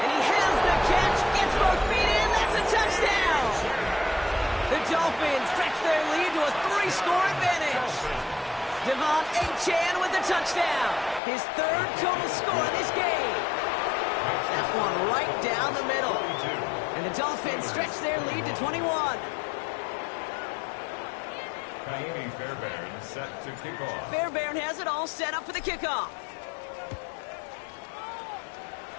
And he has the catch. Gets both feet in. That's a touchdown. The Dolphins stretch their lead to a 3-score advantage. Devon Achane with the touchdown. His third total score in this game. That one right down the middle. And the Dolphins stretch their lead to 21. Ka'imi Fairbairn set to kick off. Fairbairn has it all set up for the kickoff.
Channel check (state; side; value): drops out; right; at 11.2 s